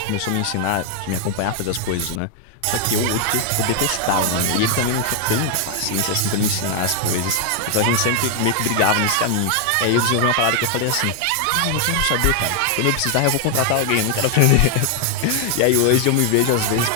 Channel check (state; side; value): different; both; correlation 0.00